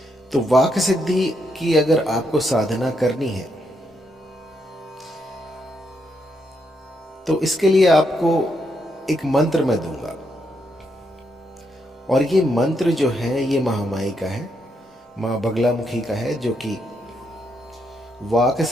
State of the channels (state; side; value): normal; both; correlation 0.79